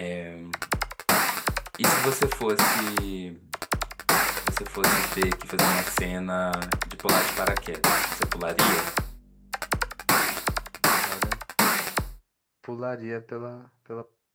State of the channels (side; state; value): both; identical; correlation 1.00